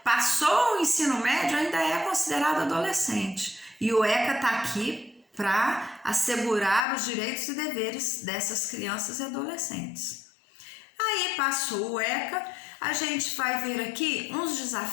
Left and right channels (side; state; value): right; drops out; at 6.9 s